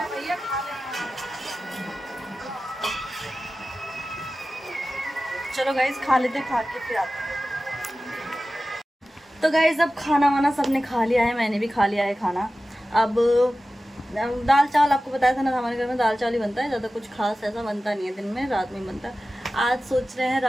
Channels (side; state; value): both; normal; correlation 0.95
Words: चलो गाइस खा लेते, खा के फिर आते हैं। तो गाइस अब खाना वाना सबने खा लिया है, मैंने भी खा लिया है खाना। अब दाल चावल आपको बताया था ना, हमारे घर में दाल चावल ही बनता है, ज़्यादा कुछ खास ऐसा बनता नहीं है दिन में, रात में बनता है। आज सोच रहे हैं